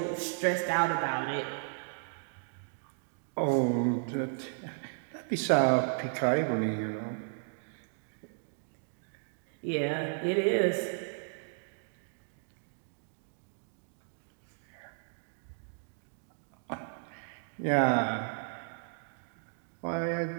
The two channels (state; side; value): silent; left; digital silence